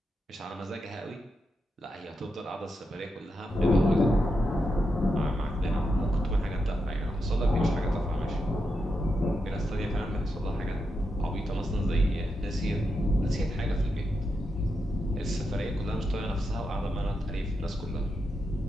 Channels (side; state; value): both; normal; correlation 0.86